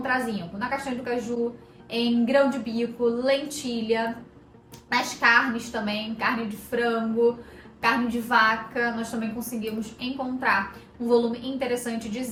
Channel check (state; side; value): identical; both; correlation 1.00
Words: zinco? Na castanha do caju, em grão de bico, lentilha, nas carnes também, carne de frango, carne de vaca, nós também conseguimos encontrar um volume interessante de